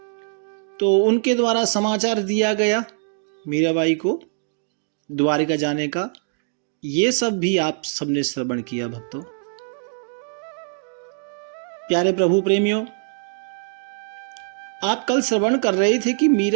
तो उनके द्वारा समाचार दिया गया मीराबाई को द्वारिका जाने का। ये सब भी आप सबने श्रवण किया भक्तों। प्यारे प्रभु प्रेमियों, आप कल श्रवण कर रहे थे कि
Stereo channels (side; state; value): left; silent; digital silence